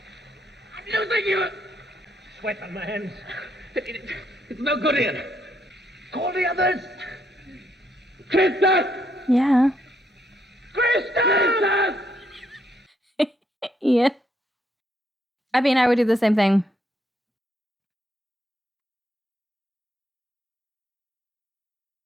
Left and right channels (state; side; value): normal; both; correlation 0.74